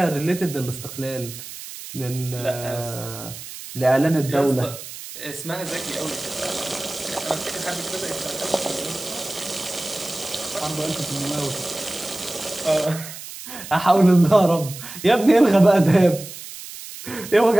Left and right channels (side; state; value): right; noise; hiss, 12 dB below the sound